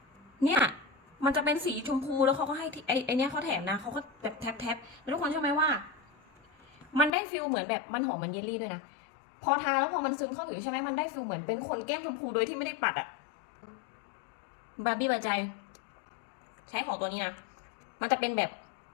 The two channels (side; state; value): right; drops out; at 7.1 s